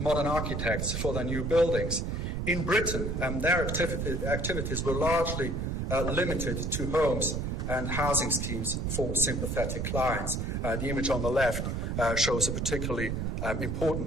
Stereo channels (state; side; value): noise; right; rumble, 1 dB below the sound